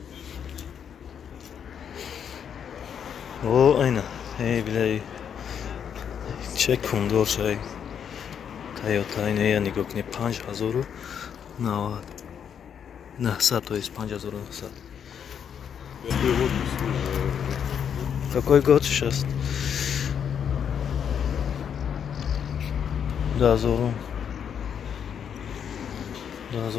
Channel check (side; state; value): right; quieter; 8.0 dB